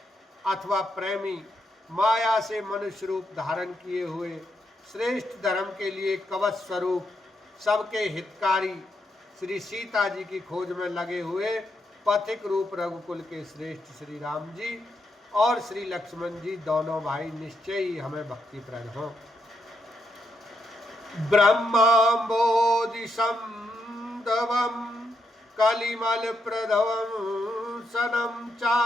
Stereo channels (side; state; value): both; normal; correlation 0.81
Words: अथवा प्रेमी, माया से मनुष्य रूप धारण किए हुए, श्रेष्ठ धर्म के लिए कवच स्वरूप, सबके हितकारी, श्री सीता जी की खोज में लगे हुए पथिक रूप रघुकुल के श्रेष्ठ श्री राम जी और श्री लक्ष्मण जी दोनों भाई निश्चय ही हमें भक्तिप्रद हों। ब्रह्मांबोधि संदवम कलिमल प्रधवम सनम